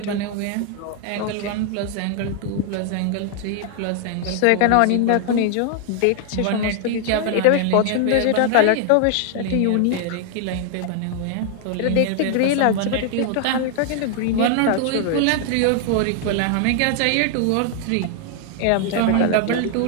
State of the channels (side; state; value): both; different; correlation 0.00